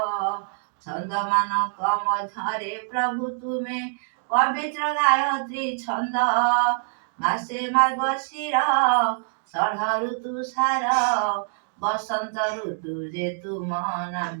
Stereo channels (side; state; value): left; silent; digital silence